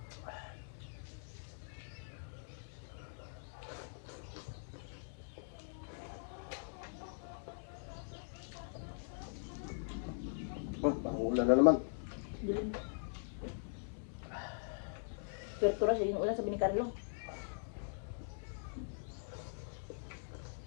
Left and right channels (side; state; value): right; silent; digital silence